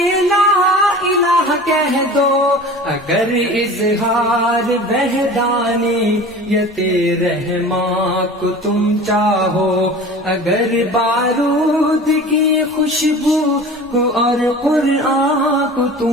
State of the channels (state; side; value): normal; both; correlation 0.39